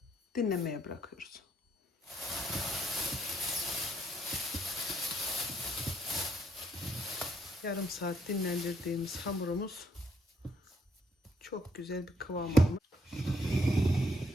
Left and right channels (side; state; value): both; normal; correlation 0.71